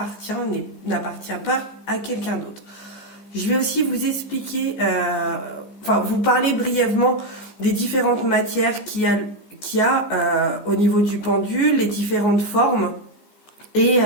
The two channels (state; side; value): late; right; 14 ms